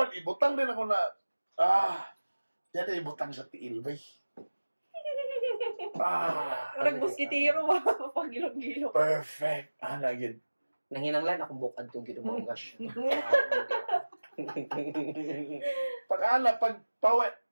ibutang din ako na, dito ibutang sa tiil, bay. Parang muskitiro, pag-gilong-gilong. Perfect. Lagid. Nanginanglan akong bukad itong ginumungas. Pag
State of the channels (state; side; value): inverted; both; correlation -1.00